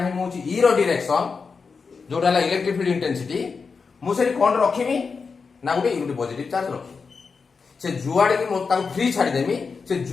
मु छी e रो डायरेक्शन जोडा ला इलेक्ट्रिक फील्ड इंटेंसिटी मु सेरी कोन रखिमी ना गुटे यूनिट पॉजिटिव चार्ज रखी से जुआडे की मो ताको फ्री छाडी देमी से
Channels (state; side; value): quieter; right; 5.1 dB